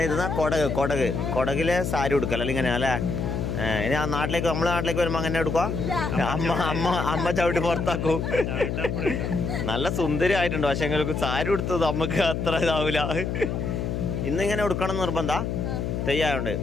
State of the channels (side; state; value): left; noise; hum, 2 dB below the sound